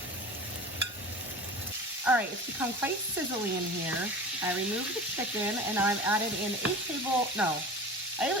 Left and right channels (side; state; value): both; normal; correlation 0.34